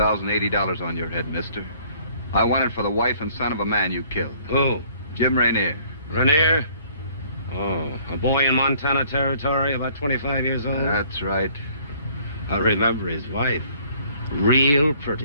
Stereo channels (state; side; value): inverted; both; correlation -0.58